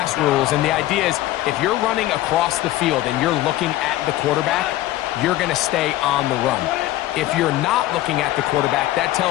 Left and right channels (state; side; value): quieter; right; 15.5 dB